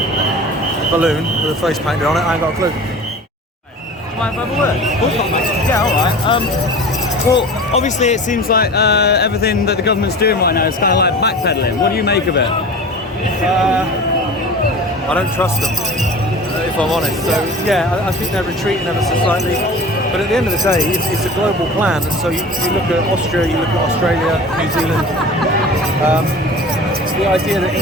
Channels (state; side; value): normal; both; correlation 0.38